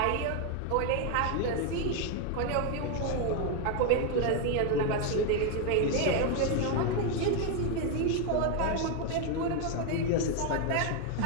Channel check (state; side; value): different; both; correlation 0.01